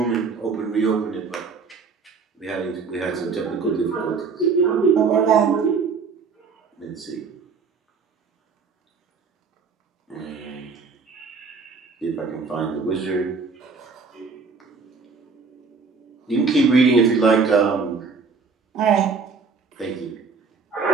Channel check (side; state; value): left; quieter; 5.0 dB